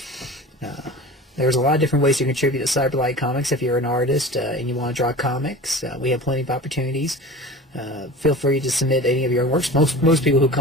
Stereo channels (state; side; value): normal; both; correlation 0.36